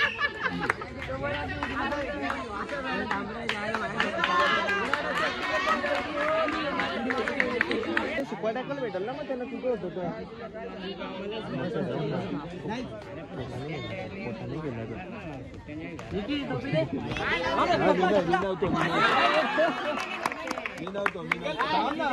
सुपाटाकल भेटल ना, मग त्याला कुठं होतं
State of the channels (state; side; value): identical; both; correlation 1.00